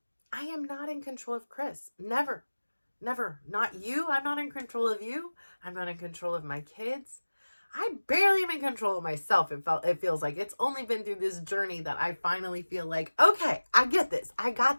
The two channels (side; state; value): both; inverted; correlation -1.00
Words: I am not in control of Chris. Never, never. Not you. I'm not in control of you. I'm not in control of my kids. I barely am in control of myself. It feels like it's only been through this journey that I finally feel like, okay, I get this. I